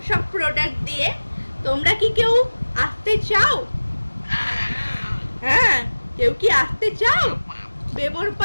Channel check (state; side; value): inverted; both; correlation -1.00